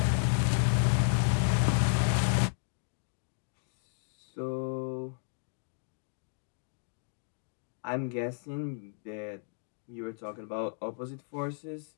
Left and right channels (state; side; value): silent; right; digital silence